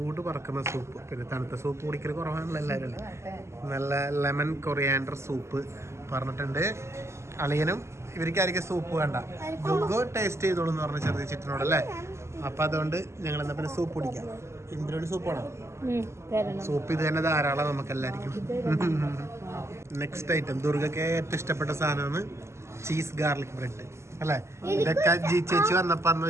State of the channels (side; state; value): left; late; 0.13 ms